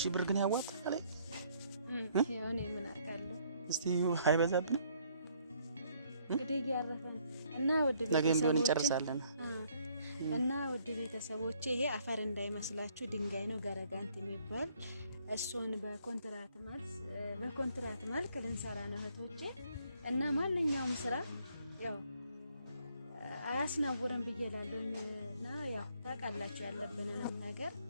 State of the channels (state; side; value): inverted; both; correlation -0.65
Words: ብር ግን ያዋጣል። ያው እኔ ምን አውቃለሁ። እስቲ አይበዛብንም እንግዲህ ያረፈን እና ወድ ቤተሰቦች ነገም ቢሆን እንጨርሳለን እና ወድ ቤተሰቦች ይሄ አፈር እንዳይመስላችሁ ድንጋይ ነው ገረጋንቲ የሚባል እሱን በኮንትራት መልክ ልንሰራ ነው እህቶቼ። እና ማንኛውም ስራ ያው አያስናውርም ብዬላለሁና ያው ታውቃላችሁ ያለብንን ነገር